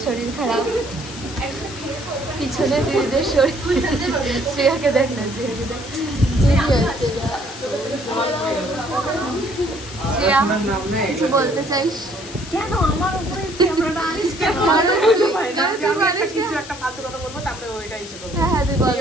শরীর খারাপ, পিছনে দিদিদের শরীর। শ্রেয়াকে দেখ না, শ্রেয়াকে দেখ। শ্রেয়া কিছু বলতে চাইস? কেন আমার উপরে ক্যামেরাটা আনিস কেন? কিছু একটা ফালতু কথা বলবো, তারপরে ওইটা এসে বলবো। হ্যাঁ তুই বল।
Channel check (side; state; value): left; noise; hiss, 14 dB below the sound